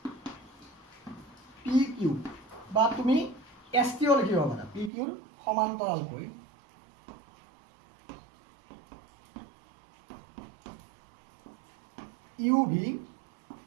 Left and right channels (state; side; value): drops out; left; at 4.9 s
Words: পি কিউ বা তুমি এছ টিও লিখিব পাৰা পি কিউৰ সমান্তৰালকৈ ইউ ভি